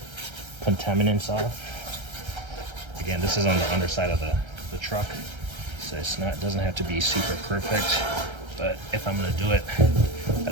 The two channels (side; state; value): left; late; 1.3 ms